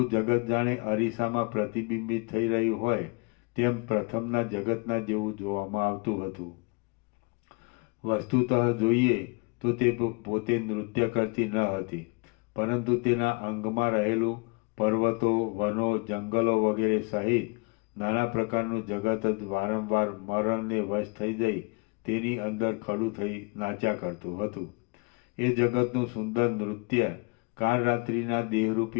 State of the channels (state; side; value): quieter; right; 29.8 dB